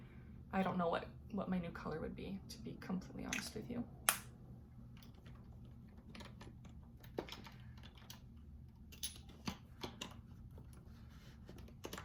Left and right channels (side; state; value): both; identical; correlation 1.00